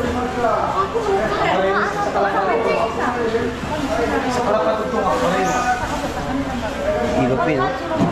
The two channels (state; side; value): identical; both; correlation 1.00